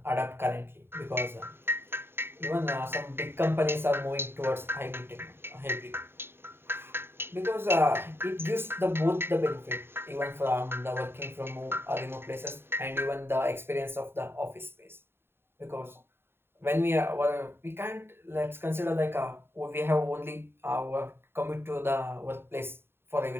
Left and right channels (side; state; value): left; late; 0.11 ms